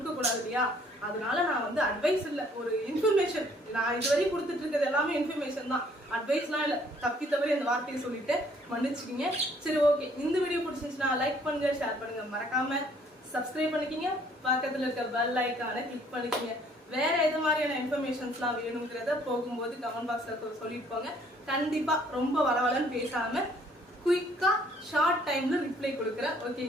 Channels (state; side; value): normal; both; correlation 0.61